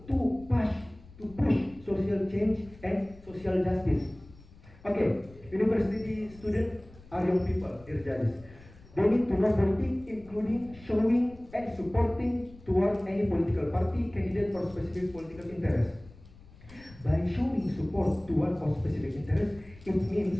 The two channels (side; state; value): left; noise; rumble, 22 dB below the sound